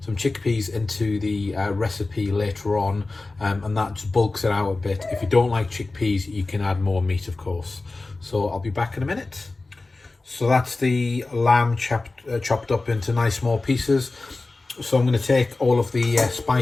chickpeas into the recipe later on, and that just bulks it out a bit. If you don't like chickpeas, you can add more meat, of course. So I'll be back in a minute. So that's the lamb chopped up into nice small pieces. So I'm going to take all of the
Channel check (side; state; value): right; quieter; 3.4 dB